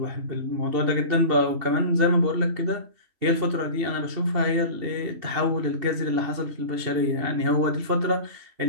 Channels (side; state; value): left; late; 2.7 ms